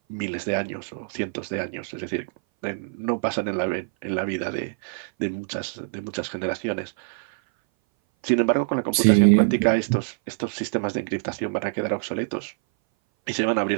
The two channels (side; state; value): left; silent; 59 dB below the other